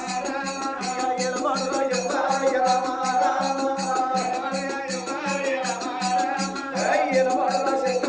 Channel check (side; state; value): both; identical; correlation 1.00